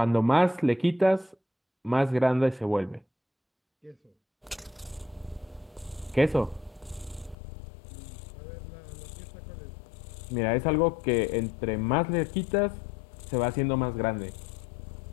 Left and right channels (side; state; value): right; drops out; at 7.4 s